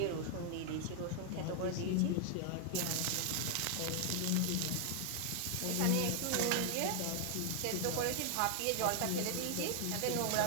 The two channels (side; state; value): both; different; correlation 0.00